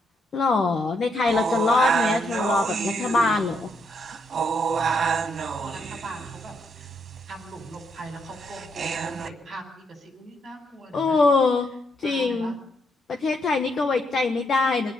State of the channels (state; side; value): normal; both; correlation 0.76